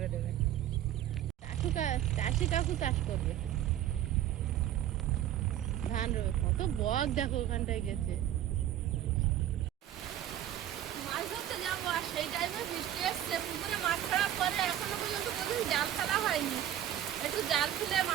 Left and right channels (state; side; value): quieter; left; 11.7 dB